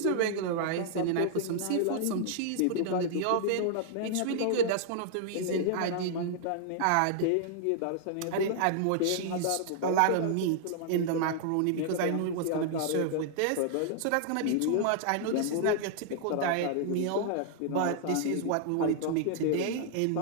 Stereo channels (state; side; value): different; both; correlation -0.01